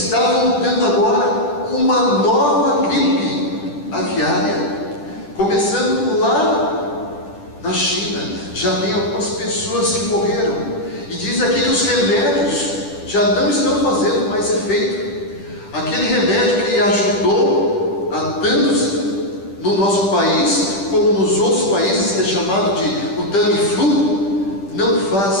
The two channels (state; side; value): late; right; 10 ms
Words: voltando agora uma nova gripe aviária, começando lá na China. Já tem algumas pessoas que morreram, e diz aqui que os remédios já não estão fazendo mais efeito. Aquele remédio que ajudou a tantos no nosso país, como nos outros países, que é chamado de o Tamiflu, não